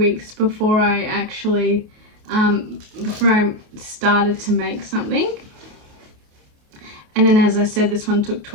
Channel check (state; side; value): late; left; 28 ms